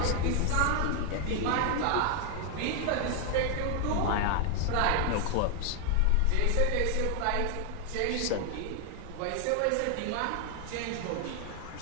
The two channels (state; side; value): different; both; correlation 0.00